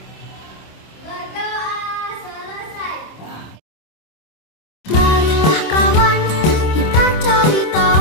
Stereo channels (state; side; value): late; right; 26 ms